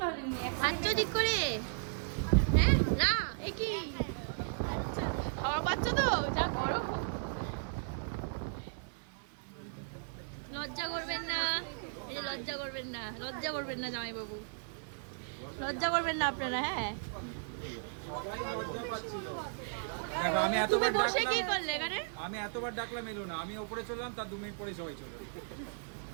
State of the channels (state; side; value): silent; left; digital silence